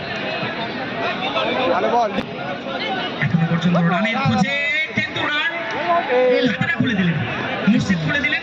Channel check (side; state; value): both; identical; correlation 1.00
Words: ভালো বল এখনো পর্যন্ত রানের খোঁজে, কিন্তু রান হাতেটা খুলে দিলেন, মুর্শিদ খুলে দিলেন